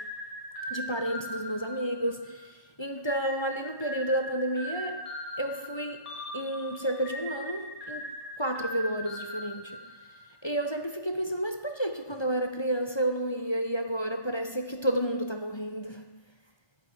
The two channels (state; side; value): late; right; 1.3 ms